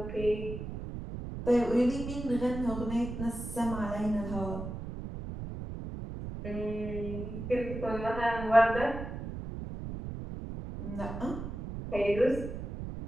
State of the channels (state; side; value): noise; right; rumble, 7 dB below the sound